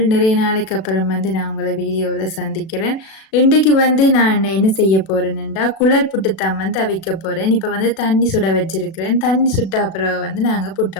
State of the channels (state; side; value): late; right; 37 ms